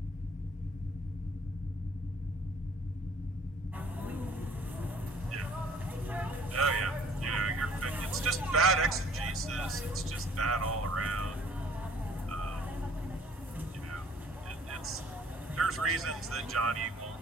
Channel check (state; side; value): normal; both; correlation 0.56